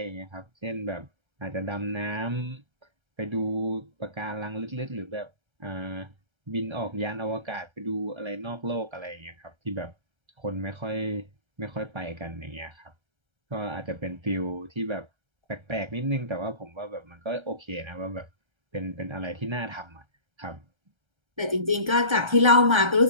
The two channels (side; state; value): left; late; 1.3 ms